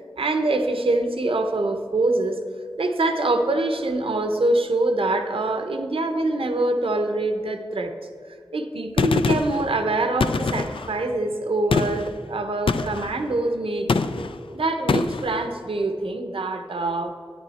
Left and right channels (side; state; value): both; normal; correlation 0.70